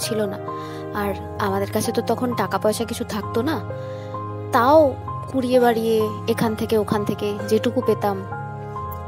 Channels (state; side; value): identical; both; correlation 1.00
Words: ছিল না, আর আমাদের কাছে তো তখন টাকা পয়সা কিছু থাকতো না, তাও কুড়িয়ে বাড়িয়ে এখান থেকে ওখান থেকে যেটুকু পেতাম,